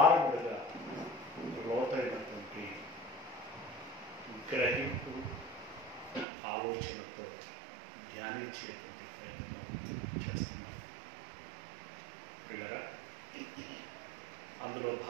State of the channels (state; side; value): drops out; left; at 6.2 s